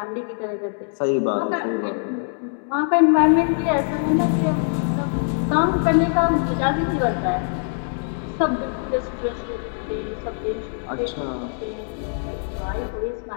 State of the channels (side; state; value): right; silent; digital silence